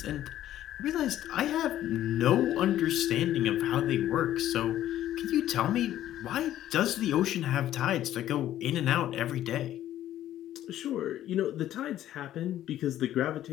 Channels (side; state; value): right; quieter; 12.6 dB